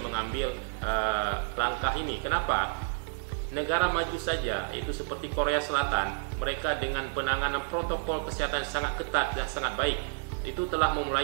mengambil langkah ini. Kenapa? Negara maju saja, itu seperti Korea Selatan, mereka dengan penanganan protokol kesehatan sangat ketat dan sangat baik, itu telah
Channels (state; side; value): silent; left; digital silence